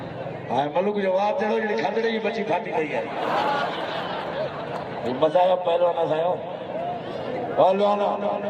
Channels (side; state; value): both; identical; correlation 1.00